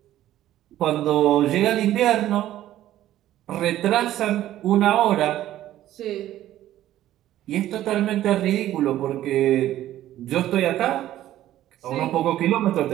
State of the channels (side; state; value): left; quieter; 13.3 dB